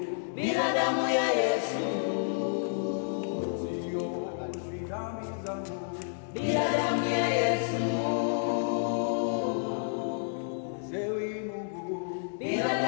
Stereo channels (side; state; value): right; silent; digital silence